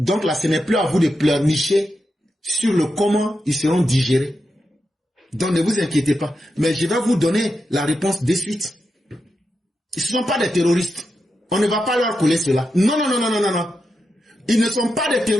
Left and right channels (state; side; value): normal; both; correlation 0.87